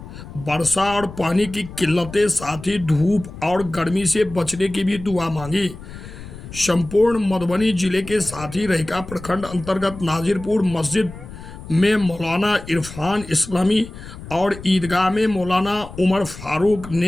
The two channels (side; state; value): left; noise; rumble, 14 dB below the sound